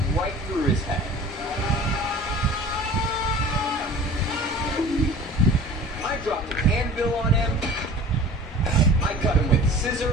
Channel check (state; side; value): normal; both; correlation 0.42